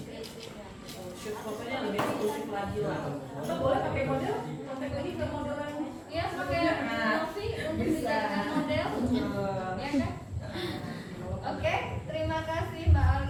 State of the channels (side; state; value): both; identical; correlation 1.00